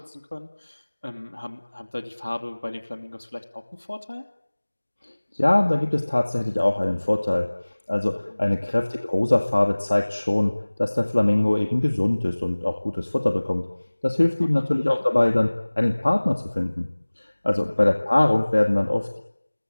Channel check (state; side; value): inverted; both; correlation -1.00